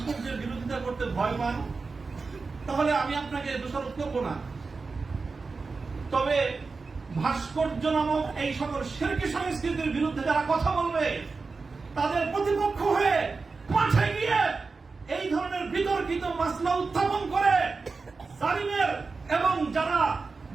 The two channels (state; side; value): quieter; left; 4.3 dB